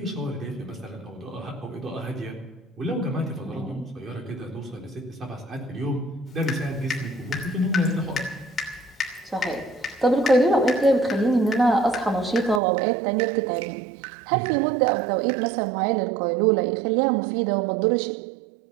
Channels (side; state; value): left; drops out; at 12.6 s